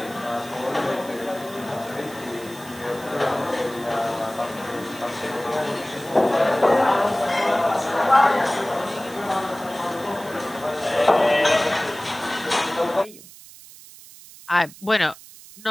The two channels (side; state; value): right; noise; hiss, 19 dB below the sound